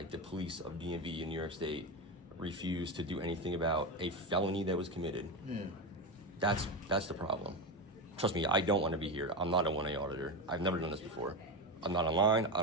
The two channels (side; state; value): both; normal; correlation 0.16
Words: the police of DMV in New York State, refused to do anything about a felony that was committed. That's the problem. Trust me, I don't want to be here. I'm not a 1A auditor. I've never done this before. I'm not online. I